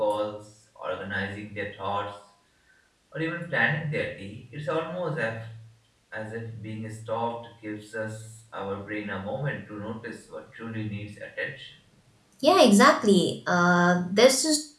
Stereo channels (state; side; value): identical; both; correlation 1.00